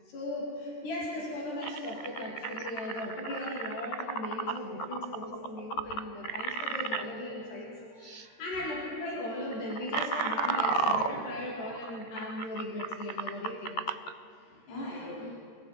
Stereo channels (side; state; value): right; late; 13 ms